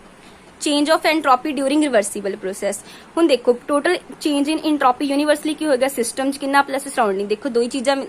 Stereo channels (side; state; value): both; identical; correlation 1.00